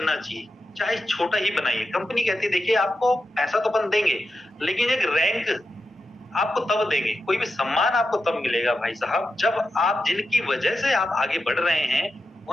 चाहिए, चाहे छोटा ही बनाइए, कंपनी कहती है देखिए आपको पैसा तो अपन देंगे, लेकिन एक रैंक आपको तब देंगे, कोई भी सम्मान आपको तब मिलेगा भाई साहब, जब आप, जिनकी वजह से आप आगे बढ़ रहे हैं,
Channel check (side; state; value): both; normal; correlation 0.89